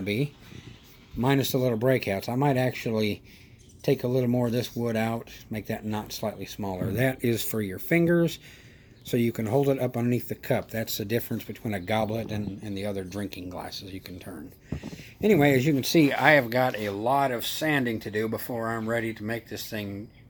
be, minus the little breakouts. I might actually take a little more of this wood out, make that knot slightly smaller. That is for your fingers, so you can hold it up underneath the cup. That's the difference between a goblet and the other drinking glasses you can turn. Anyway, as you can see, I have got a lot of sanding to do before I'm ready to make this thing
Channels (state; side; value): identical; both; correlation 1.00